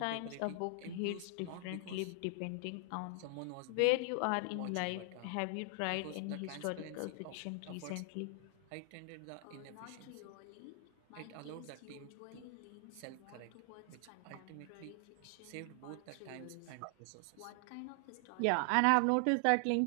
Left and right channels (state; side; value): different; both; correlation 0.00